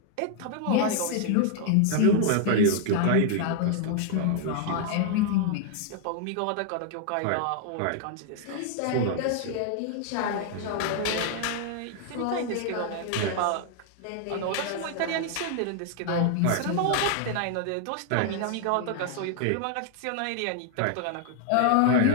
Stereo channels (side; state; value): both; different; correlation 0.00